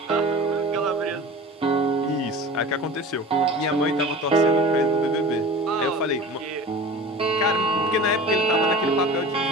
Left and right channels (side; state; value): both; normal; correlation 0.37